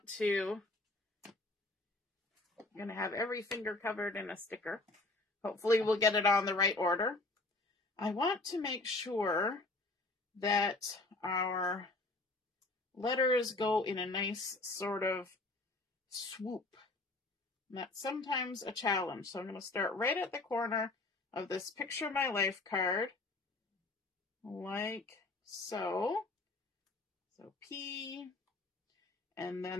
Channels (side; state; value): right; quieter; 3.0 dB